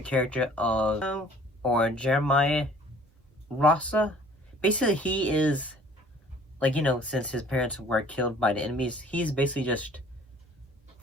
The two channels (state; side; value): normal; both; correlation 0.53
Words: character of, or Jeremiah Rasa, basically he is, like, you know, since his parents were killed by the enemies, he's basically just